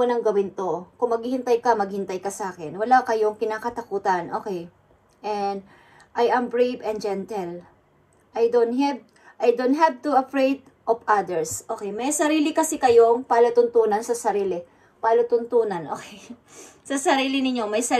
gawin to. Kung maghihintay ka sa akin. Wala kayong kinakatakutan, okay? And, I am brave and gentle. I don't have to afraid of others. Okay, may sarili kasi kayong palatuntunan sa sarili. Palutuntunan, okay. Sa sarili ninyo, may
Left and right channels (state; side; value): identical; both; correlation 1.00